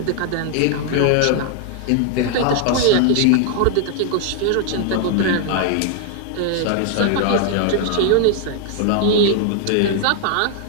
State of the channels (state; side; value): different; both; correlation 0.00